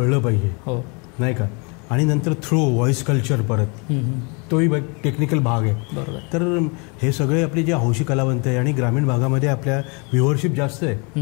पाहिजे, हो नाही का. आणि नंतर थ्रू व्हॉइस कल्चर परत तोही टेक्निकल भाग आहे. तर हे सगळे आपले जे हौशी कलावंत आहे आणि ग्रामीण भागामध्ये आपल्या व्ह्युअरशिप जास्त आहे,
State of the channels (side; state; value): right; quieter; 32.3 dB